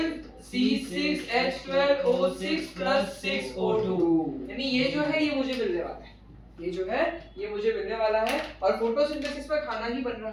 C6H12O6 + 6O2, यानी ये जो है ये मुझे मिलने वाला है, ये जो है ये मुझे मिलने वाला है। और फोटोसिंथेसिस में खाना ही बन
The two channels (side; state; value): both; identical; correlation 1.00